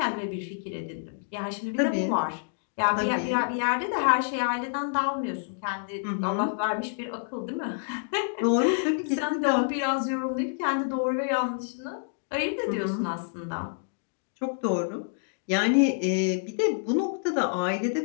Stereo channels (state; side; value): silent; right; digital silence